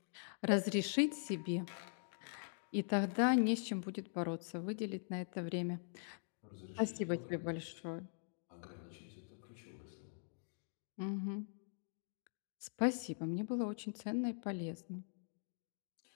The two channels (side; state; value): right; silent; digital silence